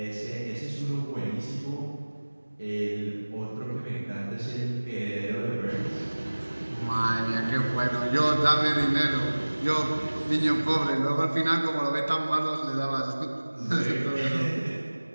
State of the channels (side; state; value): both; inverted; correlation -1.00